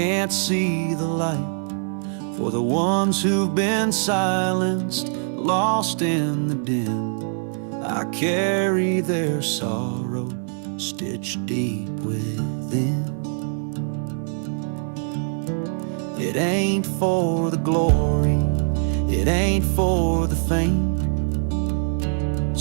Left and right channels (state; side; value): silent; left; digital silence